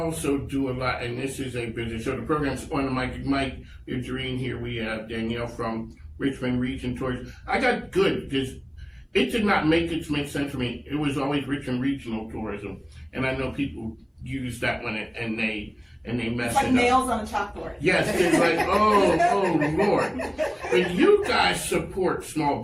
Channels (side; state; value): both; identical; correlation 1.00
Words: do a lot, and this is a business show. The program's on the mic. Mike, Jerinne here. We have Danielle from Richmond Region Tours. I got good because it did not make sense for me. It was always Richmond Regional Tourism, and I know people use that one and they mess It's like it up. nails on a chalkboard. Yes, it's like, oh Lord. But you guys support small